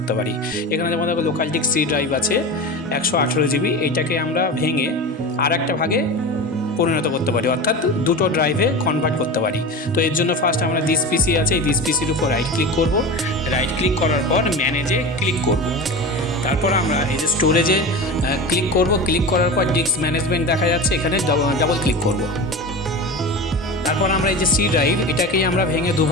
পারি। এখানে যেমন দেখো লোকাল ডিস্ক সি ড্রাইভ আছে 118 জিবি, এইটাকে আমরা ভেঙে আর একটা ভাগে পরিণত করতে পারি, অর্থাৎ দুটো ড্রাইভে কনভার্ট করতে পারি। তো এর জন্য ফার্স্ট আমরা দিস পিসি আছে, এই দিস পিসির উপর রাইট ক্লিক করব। রাইট ক্লিক করার পর ম্যানেজে ক্লিক করব। তারপর আমরা এই যে স্টোরেজে ক্লিক করব। ক্লিক করার পর ডিস্ক ম্যানেজমেন্ট দেখা যাচ্ছে, এখানে ডাবল ক্লিক করব। তারপর আমরা এই যে সি ড্রাইভ, এটাকেই আমরা ভেঙে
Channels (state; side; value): normal; both; correlation 0.28